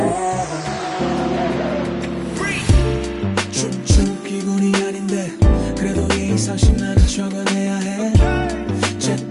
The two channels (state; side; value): identical; both; correlation 1.00